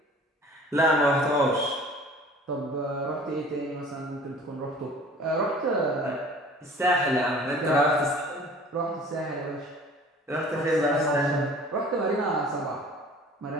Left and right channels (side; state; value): both; normal; correlation 0.47